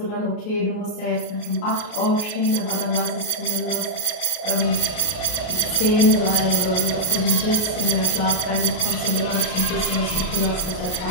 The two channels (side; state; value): right; late; 33 ms